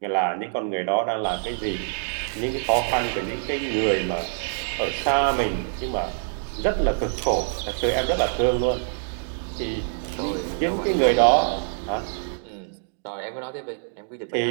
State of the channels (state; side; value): silent; left; digital silence